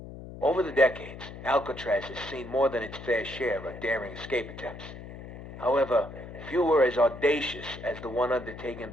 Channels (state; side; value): noise; left; hum, 13 dB below the sound